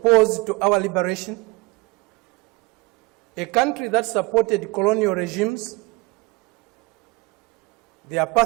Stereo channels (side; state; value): left; quieter; 24.6 dB